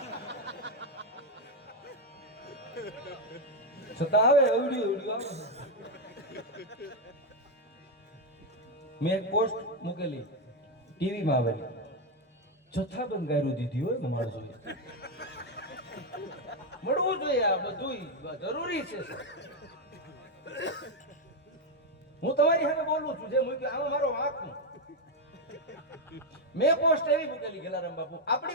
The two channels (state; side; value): normal; both; correlation 0.05